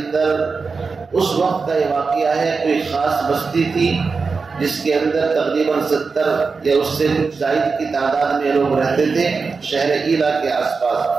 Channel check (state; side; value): quieter; left; 4.7 dB